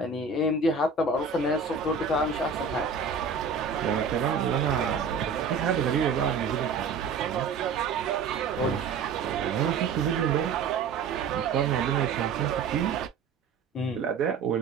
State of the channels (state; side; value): quieter; left; 5.3 dB